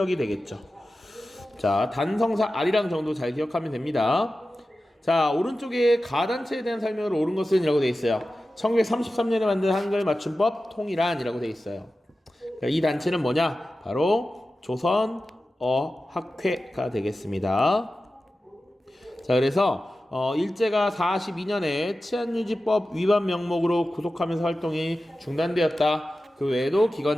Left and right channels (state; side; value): normal; both; correlation 0.94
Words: 되겠죠. 자, 단성사 아리랑 정도 잘 기억하면 됩니다. 자, 오른쪽에 가단체에 대한 설명으로 옳은 것은 이라고 되어 있어요. 1933년에 만든 한글 맞춤법 통일안이라고 되어 있어요. 이 단체는 뭐냐? 바로 조선어학회가 되겠습니다. 자, 그래서 일제가 42년에 치안유지법 위반 명목으로 구속하면서 활동이 중단되었다. 그 외에도